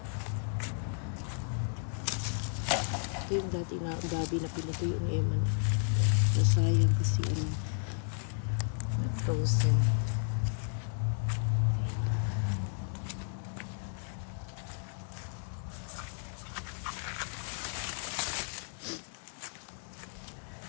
Ito yung dati na gabi na pinutuyo ni Emma. Nasayang kasi nag-frozen.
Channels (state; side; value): silent; right; digital silence